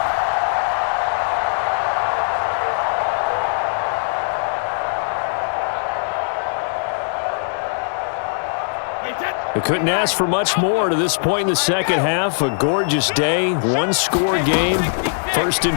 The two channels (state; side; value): silent; right; digital silence